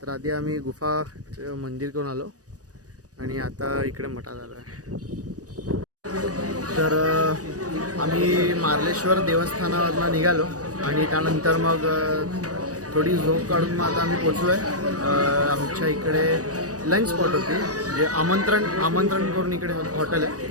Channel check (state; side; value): late; left; 0.67 ms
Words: तर आधी आम्ही गुफा मंदिर करून आलो आणि आता इकडे मठात आलो आहे. तर आम्ही मार्लेश्वर देवस्थानावरनं निघालो आणि त्यानंतर मग थोडी झोप काढून मग आता आम्ही पोचलो आहे. आमच्या इकडे लंच स्पॉट होती, जे आमंत्रण करून इकडे हॉटेल आहे,